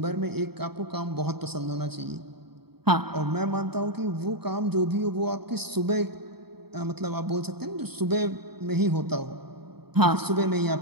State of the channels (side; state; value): left; late; 0.97 ms